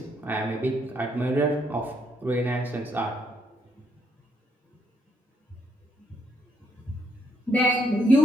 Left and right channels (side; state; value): both; normal; correlation 0.73